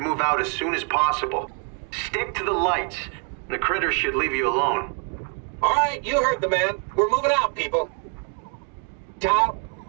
move out as soon as possible. Stick to the lights. The critters should leave you alone. All right, you heard the man. We're moving out, people. Tao,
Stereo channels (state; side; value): quieter; left; 40.0 dB